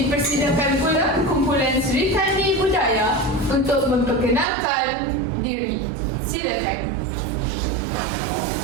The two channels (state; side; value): drops out; left; at 4.5 s